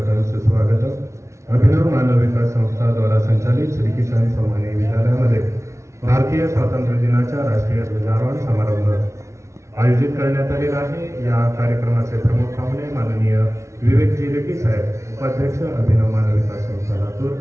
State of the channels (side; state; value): left; late; 0.14 ms